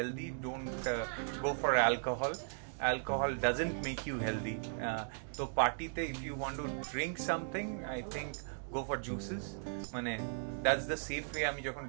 don't go for alcohol doesn't make you healthy. তো পার্টিতে if you want to drink something, I think go for juices. মানে that's the safe way. আমি যখন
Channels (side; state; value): left; silent; digital silence